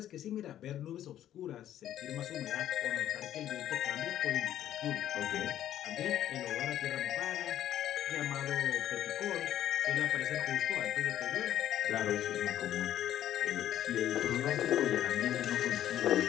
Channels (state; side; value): quieter; right; 11.7 dB